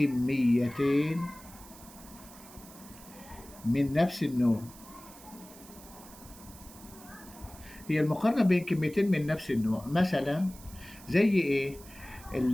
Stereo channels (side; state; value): right; noise; hiss, 19 dB below the sound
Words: من نفس النوع. هي المقارنة بين كميتين من نفس النوع، مثلا زي إيه؟